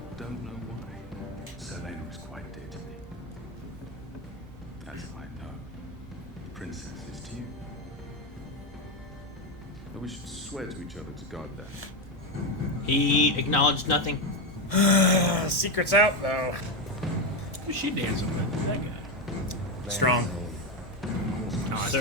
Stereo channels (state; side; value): normal; both; correlation 0.10